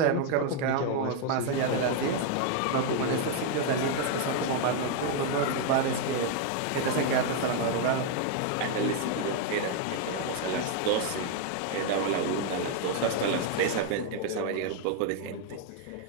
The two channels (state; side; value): different; both; correlation 0.01